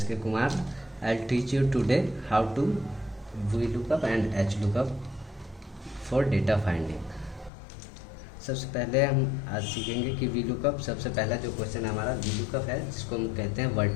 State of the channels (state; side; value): drops out; right; at 7.5 s